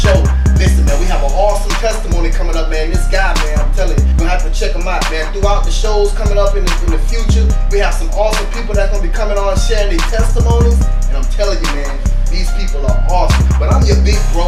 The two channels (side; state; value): both; identical; correlation 1.00